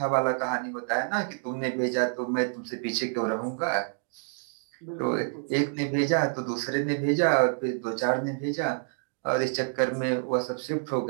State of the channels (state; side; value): silent; left; 59 dB below the other